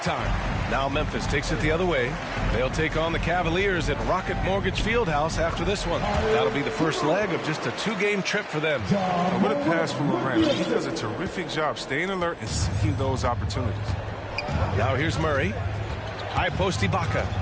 time. Now Memphis takes it the other way. They'll take on the Cavaliers at Rocket Mortgage Fieldhouse after this one. That'll be the first leg of just a two-game trip for them. What a pass from Morant. He does a terrific job staying alert and seeking those opportunities. Now here's Murray. High post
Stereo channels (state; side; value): identical; both; correlation 1.00